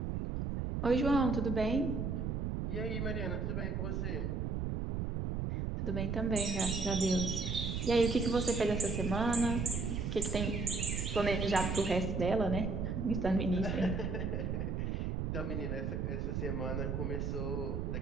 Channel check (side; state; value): right; noise; rumble, 1 dB below the sound